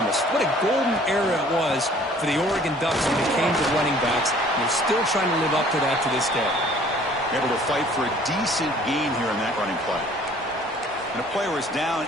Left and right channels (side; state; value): both; normal; correlation 0.54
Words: What a golden era it was for the Oregon Ducks when it came to running backs. And they're still trying to live up to that to this day. Able to fight for a decent gain here in that running play. And a player is